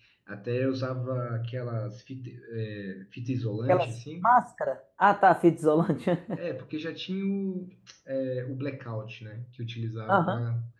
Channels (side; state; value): both; identical; correlation 1.00